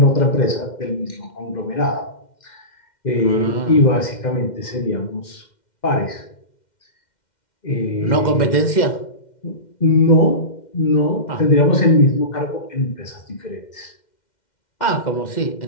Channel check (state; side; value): late; right; 2.1 ms